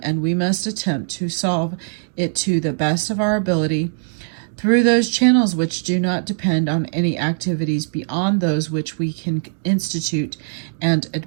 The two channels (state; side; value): silent; left; digital silence